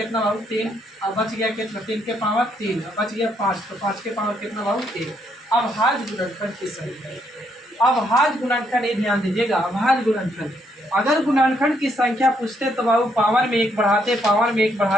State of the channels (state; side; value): normal; both; correlation 0.73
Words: बाबू 3, अब बच गया कितना 3 के पावर 3, अब बच गया 5, तो 5 के पावर कितना बाबू 1। अब अभाज्य गुणनखंड की संख्या, अभाज्य गुणनखंड ये ध्यान दीजिएगा, अभाज्य गुणनखंड अगर गुणनखंड की संख्या पूछते तो बाबू पावर में 1 बढ़ाते, पावर में 1